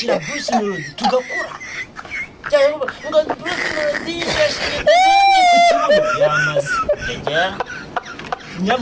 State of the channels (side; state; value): both; identical; correlation 1.00